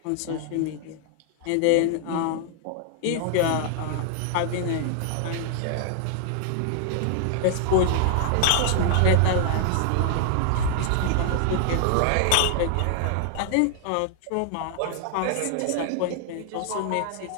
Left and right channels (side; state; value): both; different; correlation 0.00